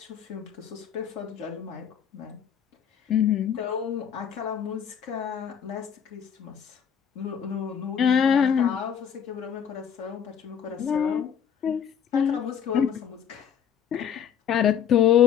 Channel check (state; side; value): quieter; right; 8.3 dB